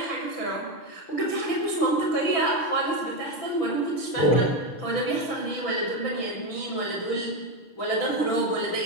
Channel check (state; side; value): late; right; 6.1 ms